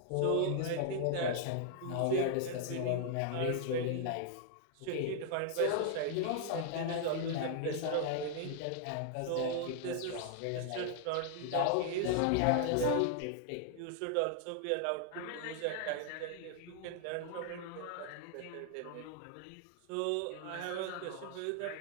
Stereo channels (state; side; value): different; both; correlation 0.00